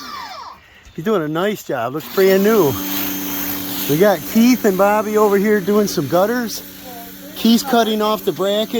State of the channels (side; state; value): both; identical; correlation 1.00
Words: He's doing a nice job. Looks brand new. We got Keith and Bobby over here doing some gutters. Keith's cutting off the